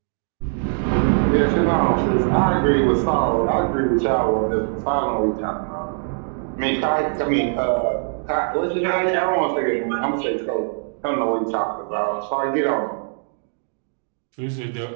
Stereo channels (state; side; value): silent; left; 60 dB below the other